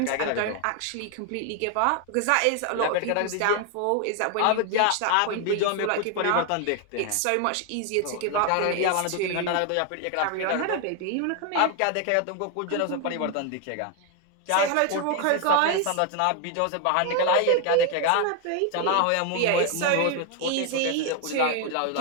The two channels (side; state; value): both; different; correlation 0.01